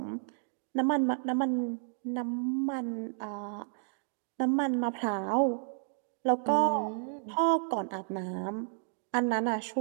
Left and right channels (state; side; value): silent; left; digital silence